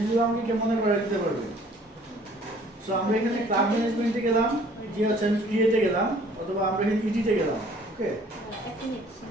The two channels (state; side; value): normal; both; correlation 0.55